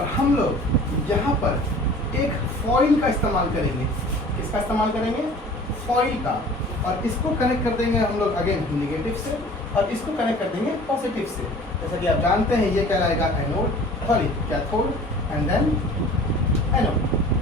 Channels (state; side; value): normal; both; correlation 0.45